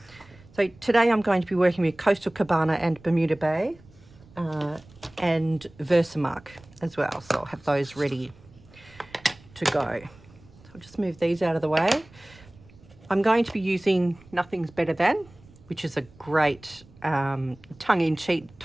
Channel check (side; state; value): right; noise; rumble, 25 dB below the sound